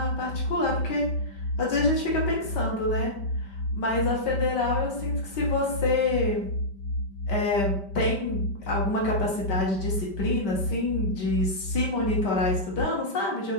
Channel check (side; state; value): right; late; 5.1 ms